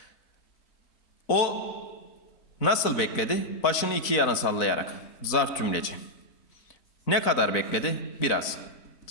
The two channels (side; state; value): right; late; 4.0 ms